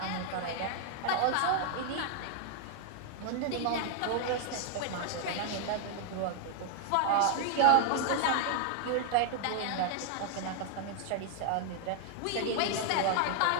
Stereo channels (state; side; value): different; both; correlation 0.00